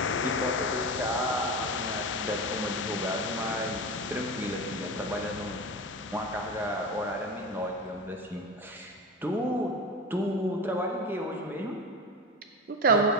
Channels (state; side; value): normal; both; correlation 0.24